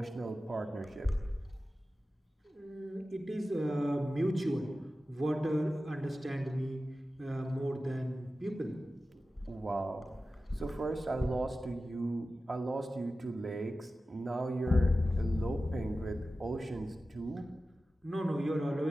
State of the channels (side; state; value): both; normal; correlation 0.94